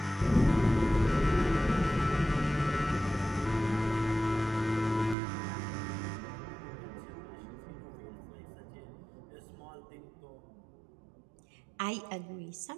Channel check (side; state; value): left; drops out; at 5.2 s